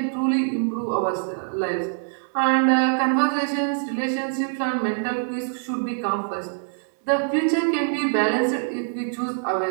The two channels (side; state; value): left; silent; digital silence